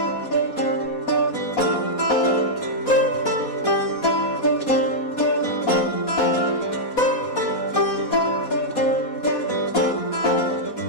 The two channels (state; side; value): late; right; 4.2 ms